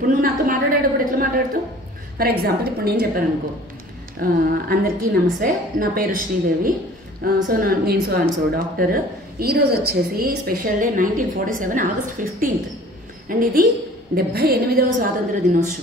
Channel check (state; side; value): normal; both; correlation 0.48